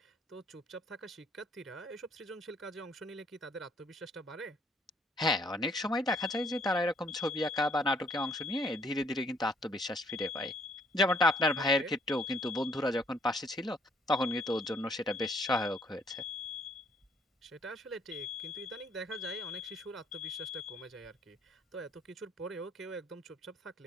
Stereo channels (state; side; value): normal; both; correlation 0.65